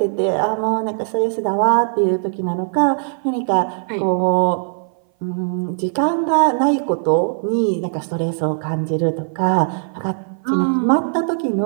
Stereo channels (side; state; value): left; silent; 59 dB below the other